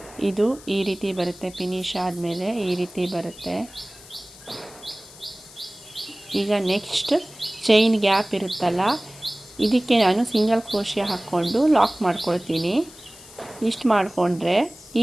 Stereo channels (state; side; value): noise; left; hiss, 20 dB below the sound